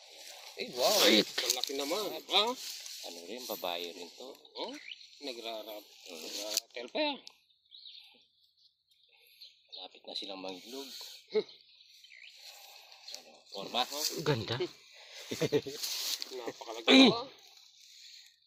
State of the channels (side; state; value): both; identical; correlation 1.00